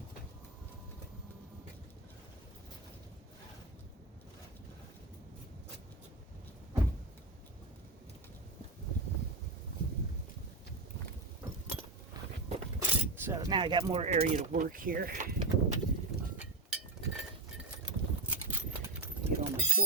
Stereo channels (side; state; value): left; quieter; 3.1 dB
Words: So now I got more area to work here. Get all my